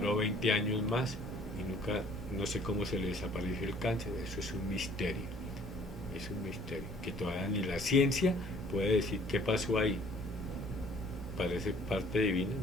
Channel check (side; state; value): both; normal; correlation 0.56